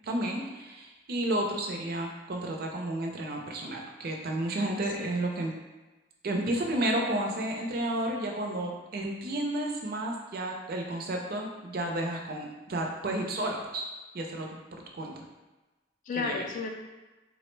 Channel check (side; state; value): both; normal; correlation 0.38